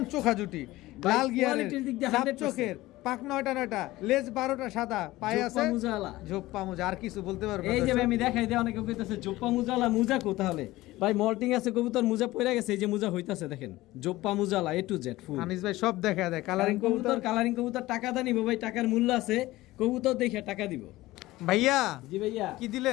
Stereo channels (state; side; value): quieter; right; 17.9 dB